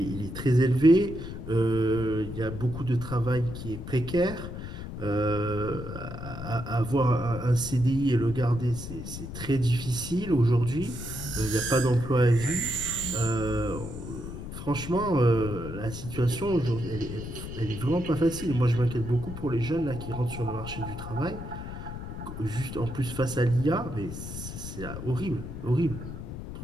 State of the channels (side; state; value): left; noise; rumble, 9 dB below the sound